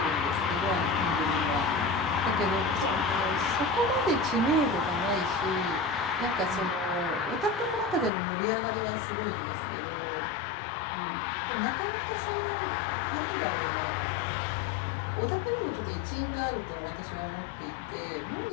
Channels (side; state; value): right; drops out; at 8.1 s